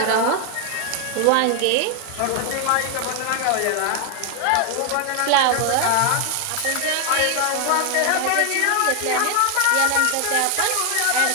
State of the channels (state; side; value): different; both; correlation 0.00